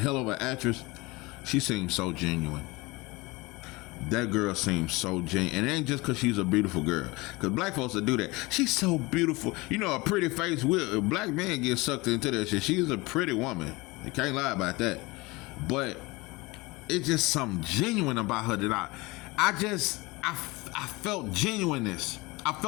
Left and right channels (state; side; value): quieter; right; 23.3 dB